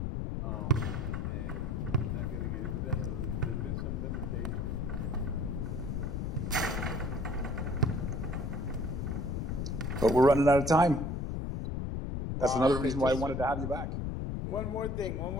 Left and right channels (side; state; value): left; noise; rumble, 2 dB below the sound